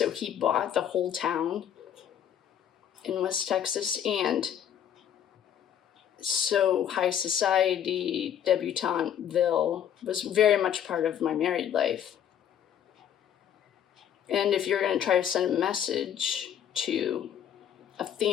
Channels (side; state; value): right; quieter; 9.5 dB